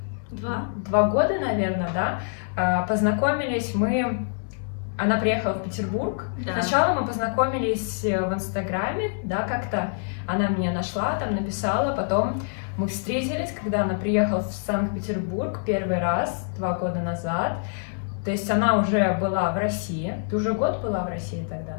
Два года, наверное, да? Познакомились мы... Она приехала в Петербург. Да. Сначала мы познакомились в Инстаграме, да, как-то она меня нашла, там написала, потом мы встретились, когда она приехала в Санкт-Петербург первый раз, 2 года назад. То есть она уже была в России. Ты уже год была в России тогда?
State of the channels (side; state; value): right; silent; digital silence